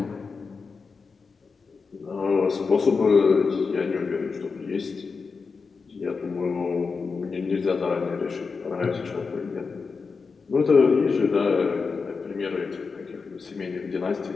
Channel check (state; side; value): quieter; right; 4.9 dB